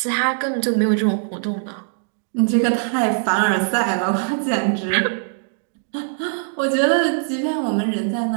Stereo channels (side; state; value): left; silent; digital silence